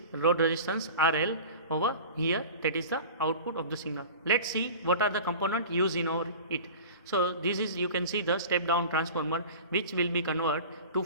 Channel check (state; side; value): inverted; both; correlation -0.37